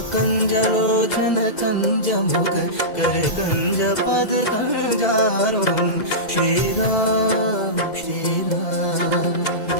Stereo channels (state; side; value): late; right; 2.0 ms